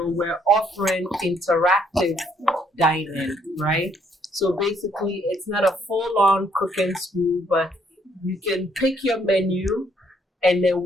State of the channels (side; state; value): both; normal; correlation 0.69